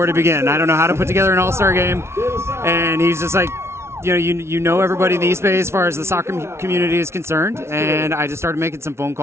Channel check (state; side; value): late; left; 0.13 ms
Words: to begin. I don't know how to put together an All-Star game. And he's just like, you know everybody in the East Bay as far as the soccer community is concerned, and I just started making some phone